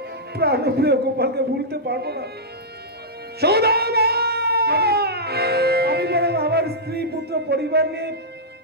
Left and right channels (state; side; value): normal; both; correlation -0.11